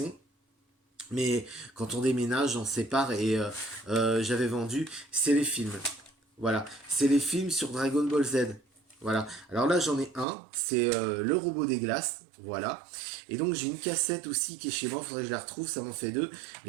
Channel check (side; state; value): left; drops out; at 10.2 s